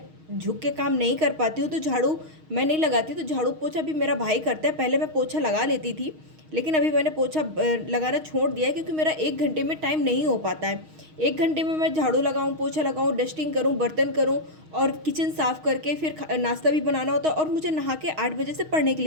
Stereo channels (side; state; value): left; late; 6.4 ms